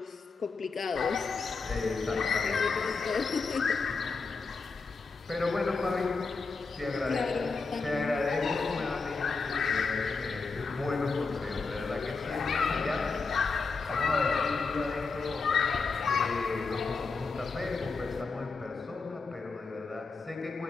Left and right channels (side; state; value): right; quieter; 4.4 dB